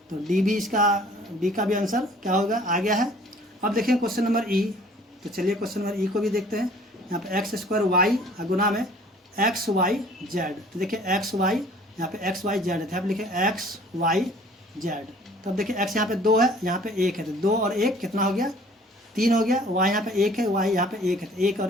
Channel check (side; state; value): both; normal; correlation 0.53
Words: तो डी भी इसका, डी का भी आंसर क्या होगा आ गया है। अब देखें क्वेश्चन नंबर ई। तो चलिए क्वेश्चन नंबर ई को भी देखते हैं। यहाँ पे एक्स स्क्वायर वाई गुना में एक्स वाई जेड। तो देखिए एक्स वाई, यहाँ पे एक्स वाई जेड है, तो यहाँ पे लिखे एक्स वाई जेड। तो अब देखिए एक्स यहाँ पे 2 है, यहाँ पे 1 है, तो 2 और 1 कितना हो गया 3 हो गया। वाई यहाँ पे 1 है, वाई यहाँ पे 1 है, तो 1